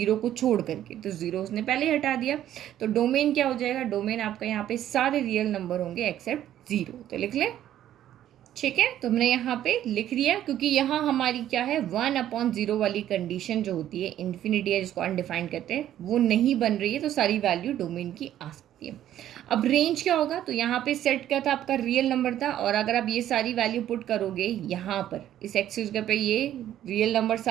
को छोड़ करके, तो 0 उसने पहले ही हटा दिया। तो डोमेन क्या हो जाएगा, डोमेन आपका यहाँ पे सारे रियल नंबर होंगे एक्सेप्ट 0, तो लिख लें। ठीक है, तो हमने यहाँ पे लिख लिया, क्योंकि यहाँ हमारी क्या है, 1/0 वाली कंडीशन जो होती है, इन्फिनिटी है जिसको अनडिफाइंड कहते हैं, वो नहीं बन रही है, तो सारी वैल्यू डोमेन की आ सकती है। अब रेंज क्या होगा, तो यहाँ पे सेट क्या था, आपका रियल नंबर था, और अगर आप ये सारी वैल्यू पुट करोगे यहाँ पर इस एक्सिस पे, ये रियल नंबर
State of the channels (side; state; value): left; quieter; 11.8 dB